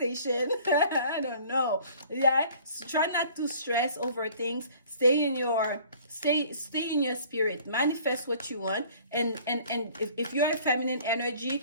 I don't know. Yeah, so try not to stress over things. Stay in your spirit, manifest what you want, and if you're a feminine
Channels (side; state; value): both; inverted; correlation -0.52